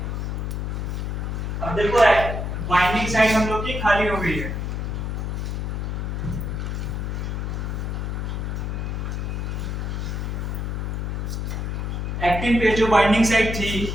अब देखो बाइंडिंग साइड हम लोग की खाली हो गई है। एक्टिन पे जो बाइंडिंग साइड थी,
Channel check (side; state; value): left; noise; hum, 2 dB below the sound